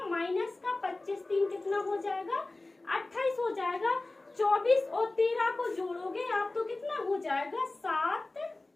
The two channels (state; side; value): quieter; right; 3.0 dB